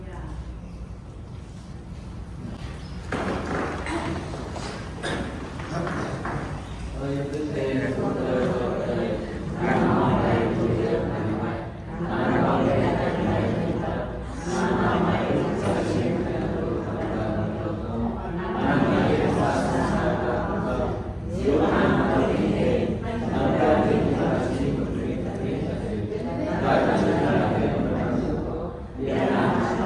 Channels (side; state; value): both; identical; correlation 1.00